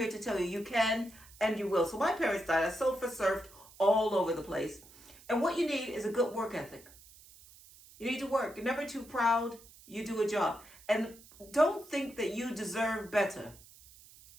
to tell you, you can and you will. So my parents died. I surfed all over the place. And what you need is a good work ethic. You need to work. You're never too proud. You do a job. And don't think that you deserve better,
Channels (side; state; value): right; noise; hiss, 22 dB below the sound